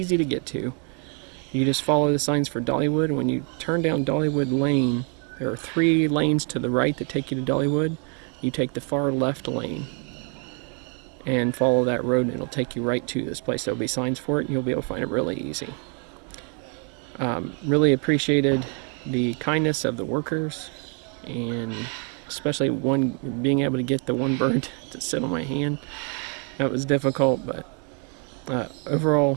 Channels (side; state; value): left; quieter; 38.5 dB